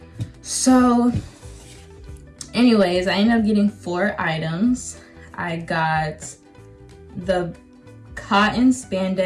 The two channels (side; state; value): both; identical; correlation 1.00